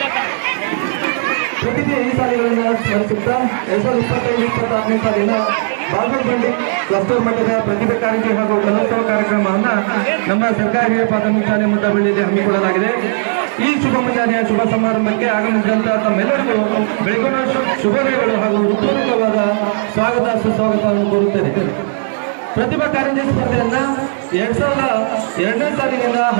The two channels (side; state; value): left; silent; digital silence